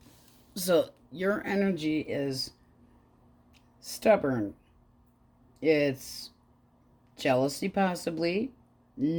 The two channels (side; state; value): both; identical; correlation 1.00